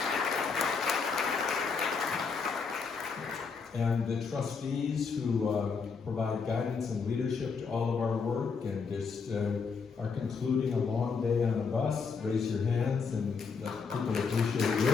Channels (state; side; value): quieter; right; 5.3 dB